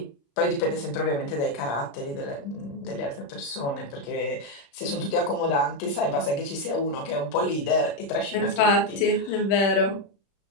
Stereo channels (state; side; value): late; right; 35 ms